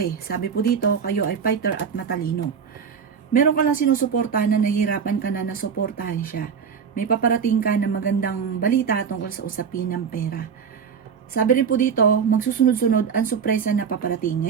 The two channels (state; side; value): quieter; left; 6.7 dB